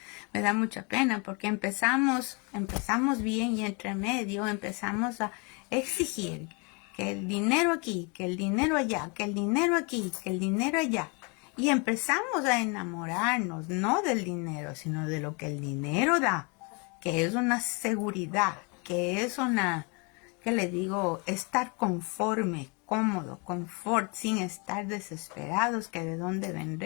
me da mucha pena porque empezamos bien y entre medio empezamos a exigir que el dinero aquí, que el dinero allá, que el dinero aquí, que el dinero allá. Y empezamos a enamorarnos, no del dinero, sino de lo que el dinero da, que es una seguridad, que es una, ¿qué le digo? Estar conforme, cómodo, confort, sin estar desesperados, que de dónde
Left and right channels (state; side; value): quieter; right; 32.1 dB